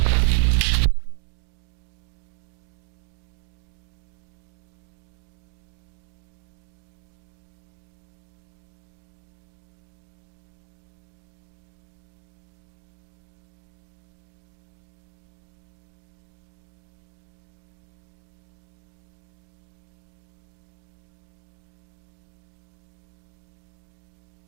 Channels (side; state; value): left; silent; 54 dB below the other